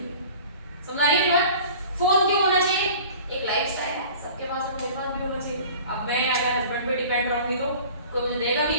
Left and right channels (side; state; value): both; inverted; correlation -0.44